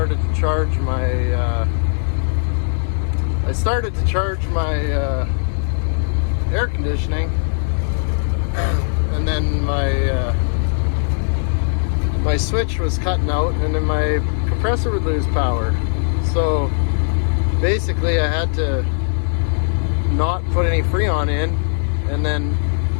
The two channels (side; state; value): right; silent; digital silence